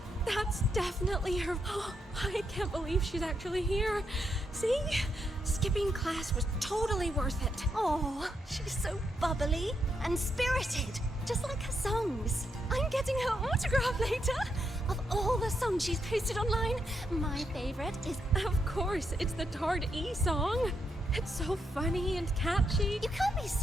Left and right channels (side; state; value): both; normal; correlation 0.80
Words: That's definitely her. Oh, I can't believe she's actually here. See? Skipping class was totally worth it. Oh, she's so bubbly and spirited, just like her songs. I'm getting her autograph later. Of all the songs she's posted online, my favorite is, of course, it's the Tard E song. It's so funny and catchy. You can't be